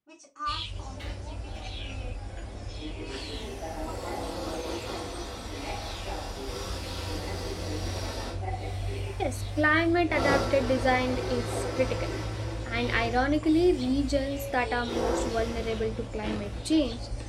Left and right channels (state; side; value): identical; both; correlation 1.00